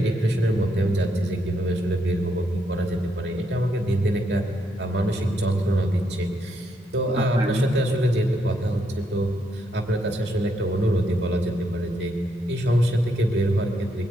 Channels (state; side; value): normal; both; correlation 0.77